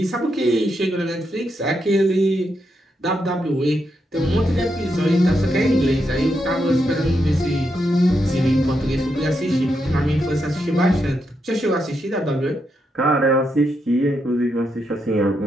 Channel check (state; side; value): normal; both; correlation 0.82